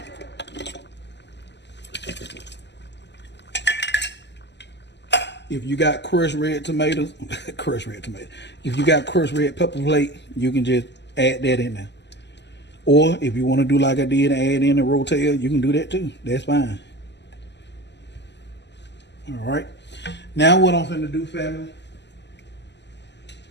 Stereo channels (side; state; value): right; late; 0.50 ms